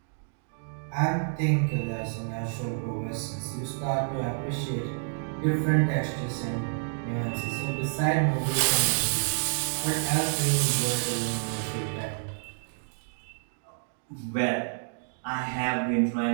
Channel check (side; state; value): left; silent; digital silence